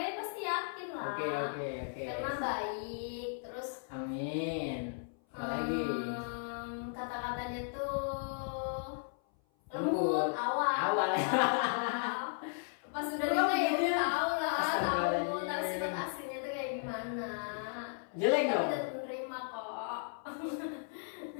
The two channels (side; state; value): right; silent; 54 dB below the other